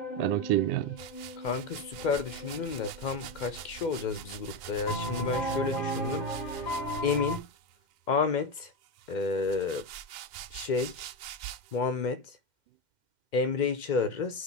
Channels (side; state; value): right; late; 2.1 ms